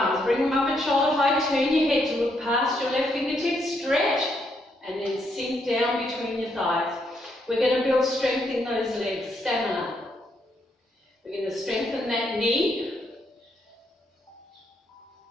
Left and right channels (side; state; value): both; normal; correlation 0.76